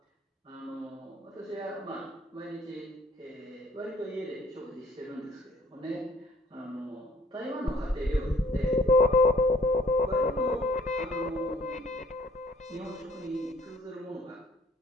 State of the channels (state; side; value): normal; both; correlation 0.59